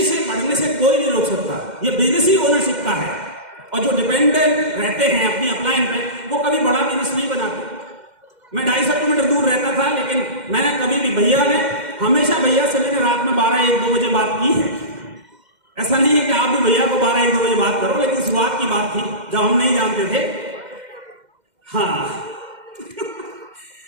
से बढ़ने से कोई नहीं रोक सकता। ये बिजनेस ही ओनरशिप का है। और जो डिपेंडेंट रहते हैं अपनी अपलाइन पे, वो कभी बड़ा बिजनेस नहीं बनाते। मैं 250 किलोमीटर दूर रहता था, लेकिन मैंने कभी भी हमेशा भैया से मैंने रात में 12-1-2 बजे बात की है। ऐसा नहीं है कि आप भी भैया को 12-1-2 बजे बात करो, लेकिन शुरुआत की बात थी जब हम नहीं जानते थे। हाँ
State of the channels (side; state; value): left; late; 2.1 ms